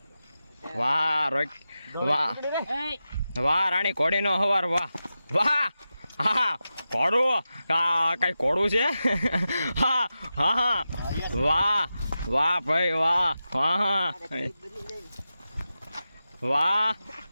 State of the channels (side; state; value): both; inverted; correlation -0.92